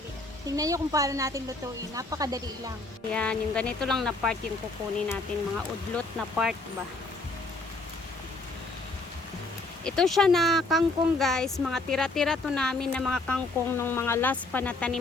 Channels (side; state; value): right; quieter; 3.2 dB